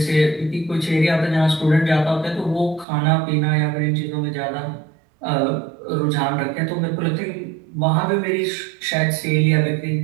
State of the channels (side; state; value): left; drops out; at 2.9 s